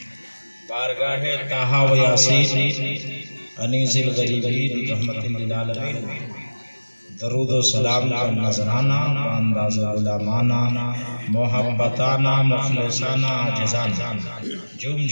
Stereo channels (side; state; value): both; inverted; correlation -1.00